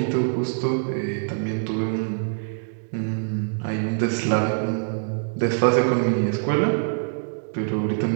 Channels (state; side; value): silent; left; digital silence